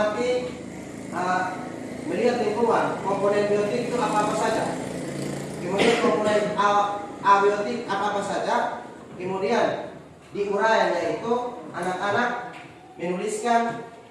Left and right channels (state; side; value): identical; both; correlation 1.00